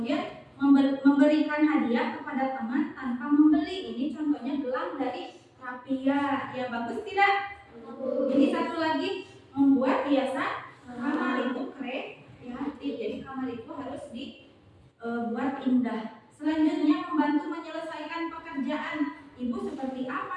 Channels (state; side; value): identical; both; correlation 1.00